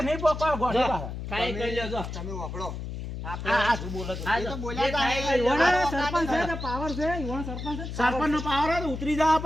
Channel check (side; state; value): left; noise; hum, 7 dB below the sound